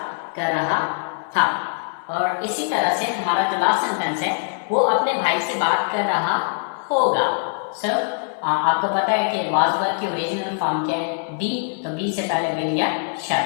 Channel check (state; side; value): silent; right; 64 dB below the other